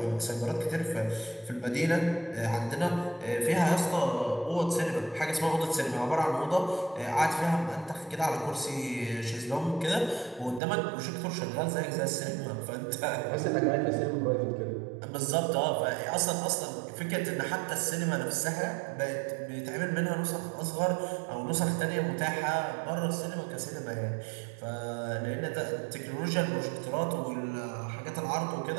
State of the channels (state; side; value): drops out; left; at 10.6 s